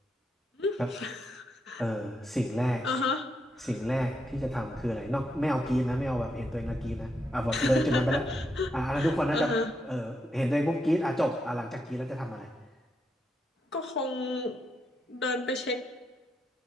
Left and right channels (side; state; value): both; normal; correlation 0.81